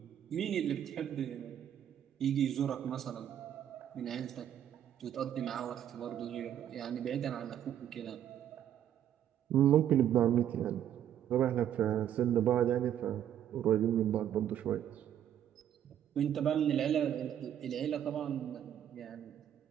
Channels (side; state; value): left; quieter; 10.4 dB